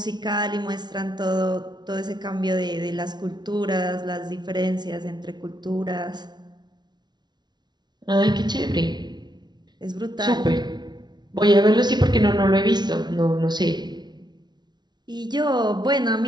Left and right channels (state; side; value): late; left; 0.20 ms